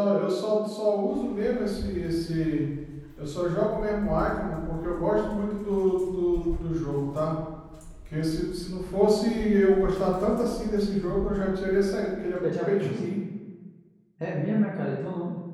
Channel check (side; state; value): both; identical; correlation 1.00